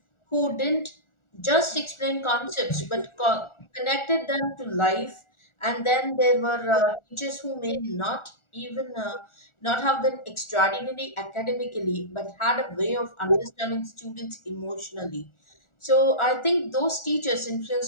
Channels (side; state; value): right; late; 1.4 ms